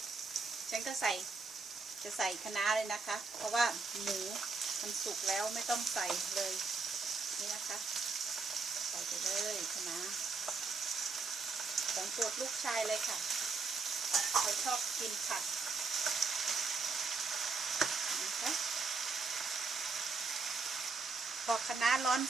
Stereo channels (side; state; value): left; quieter; 4.3 dB